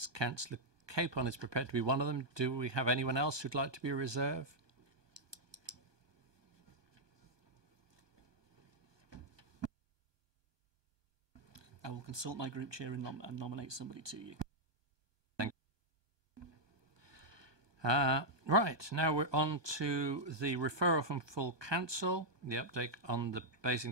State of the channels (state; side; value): late; left; 1.2 ms